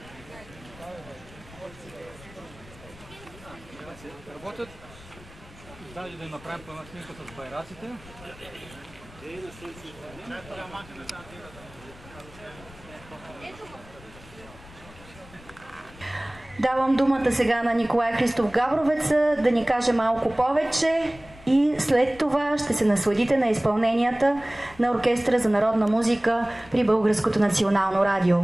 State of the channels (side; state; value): left; noise; rumble, 21 dB below the sound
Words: Работят. Даже да им направим по една снимка с байраците. Давам думата сега на Николай Христов Габровец да ни каже малко повече и след това ще се насладите на изпълненията на Оркестъра за народна музика при Българското национално радио.